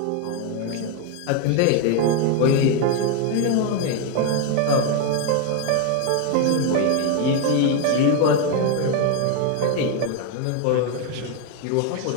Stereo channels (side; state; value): both; different; correlation 0.01